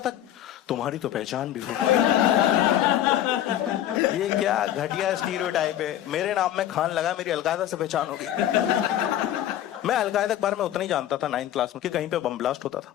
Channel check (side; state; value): right; quieter; 12.0 dB